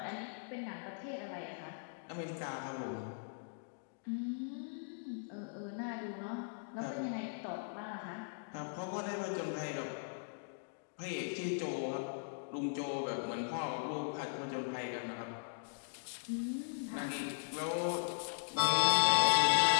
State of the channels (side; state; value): right; silent; digital silence